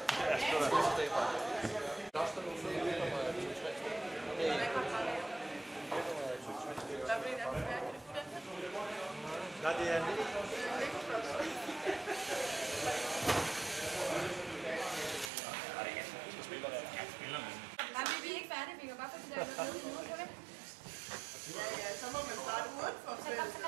Nej, det er en lille. Ja, så må man starte udenfor feltet.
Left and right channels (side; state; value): left; drops out; at 15.3 s